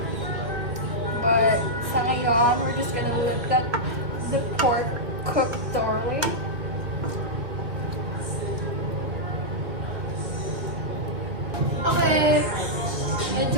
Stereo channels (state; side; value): late; left; 1.9 ms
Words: but sa ngayon we're just gonna let the pork cook thoroughly. Okay,